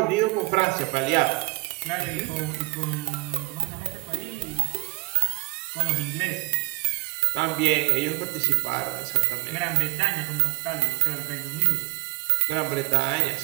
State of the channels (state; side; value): quieter; left; 25.0 dB